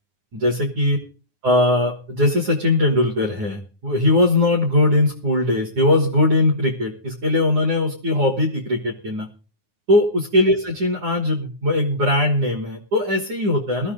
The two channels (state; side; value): late; left; 9.6 ms